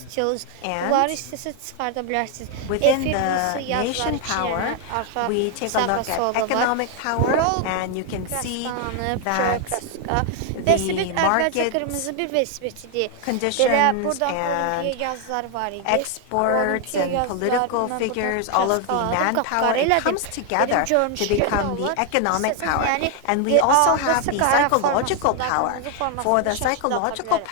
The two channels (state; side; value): different; both; correlation 0.00